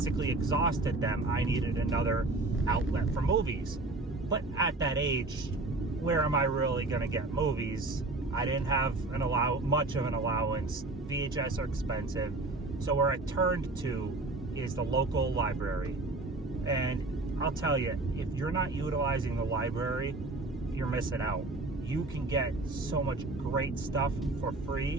exhausted them, I needed another outlet for movies. But at that age, where am I really going to get movies? I didn't have much of an allowance. VHS are expensive. So where I turned to is the local library. And I'll tell you, if you're not utilizing the library, you're missing out. You can get so much great stuff for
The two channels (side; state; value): left; quieter; 3.1 dB